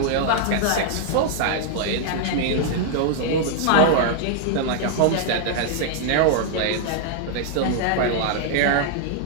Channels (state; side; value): different; both; correlation 0.00